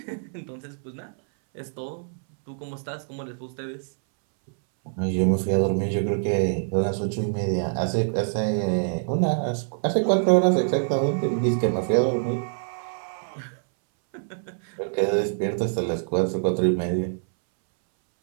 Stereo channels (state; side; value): silent; left; 61 dB below the other